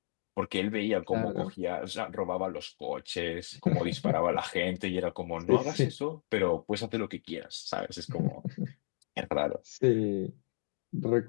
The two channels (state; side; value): silent; right; digital silence